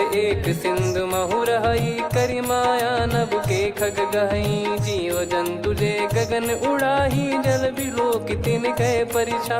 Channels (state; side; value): identical; both; correlation 1.00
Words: सिंधु महु रहई, करि माया नभ के खग गहई। जीव जंतु जे गगन उड़ाही, जल बिलोक तिन कह